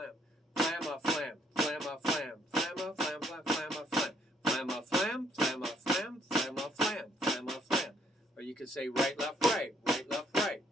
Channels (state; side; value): normal; both; correlation 0.68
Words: FlamaFlam. FlamaFlam. FlamaFlam. FlamaFlam. FlamaFlam. FlamaFlam. FlamaFlam. FlamaFlam. Or you could say right, left, right. Right, left, right.